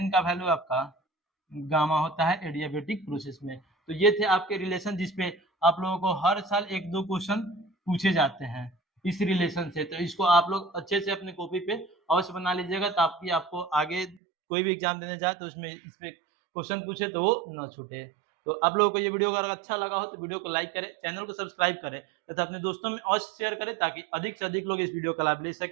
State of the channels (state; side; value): drops out; left; at 14.2 s